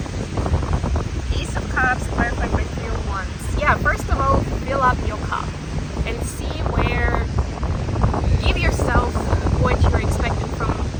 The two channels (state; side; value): identical; both; correlation 1.00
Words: Ace of Cups, clarified by Three of Wands. Yeah, first of all, fill up your cup and see where, give yourself what you're expecting from